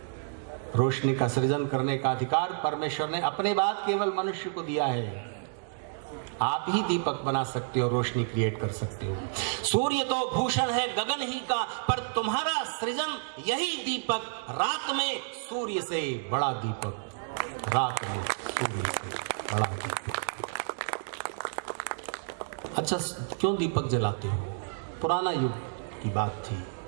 रोशनी का सृजन करने का अधिकार परमेश्वर ने अपने बाद केवल मनुष्य को दिया है। आप ही दीपक बना सकते हो, रोशनी क्रिएट कर सकते हो। सूर्य तो भूषण है गगन ही का, पर तुम्हारा सृजन यही दीपक। रात में सूर्य से बड़ा दीपक, रात में सूर्य से बड़ा दीपक। अच्छा, क्यों दीपक जलाते हो? पुराना युग की बात थी,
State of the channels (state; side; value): silent; left; digital silence